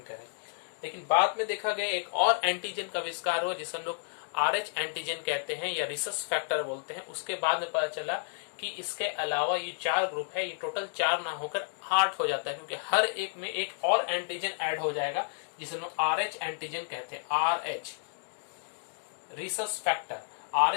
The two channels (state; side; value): silent; right; digital silence